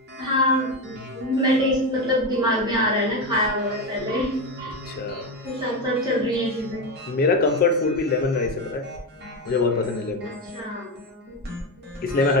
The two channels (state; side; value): normal; both; correlation 0.14